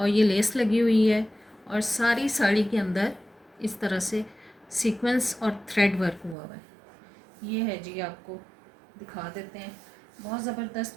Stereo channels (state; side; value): drops out; left; at 6.4 s